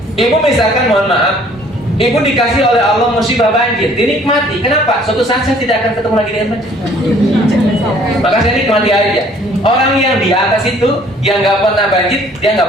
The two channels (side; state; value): both; normal; correlation 0.57